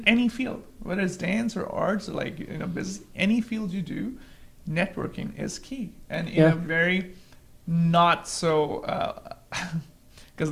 any field, whether it's dance or arts or like business, any field you do, networking is key. And in Yeah. a very not so because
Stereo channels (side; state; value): both; identical; correlation 1.00